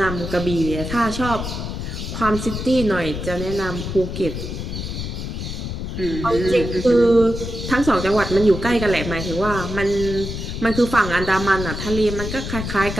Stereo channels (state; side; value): noise; left; rumble, 6 dB below the sound